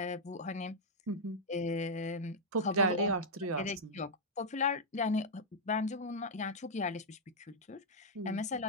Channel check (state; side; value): normal; both; correlation -0.05